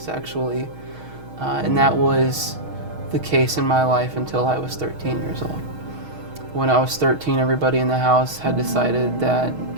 And that was the case in my life until I was 13 years old. When I was 13, everybody in the house had decided that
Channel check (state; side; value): late; left; 6.4 ms